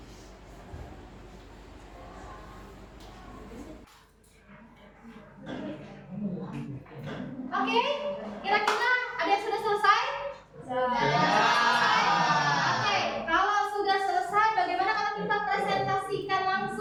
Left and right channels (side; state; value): both; identical; correlation 1.00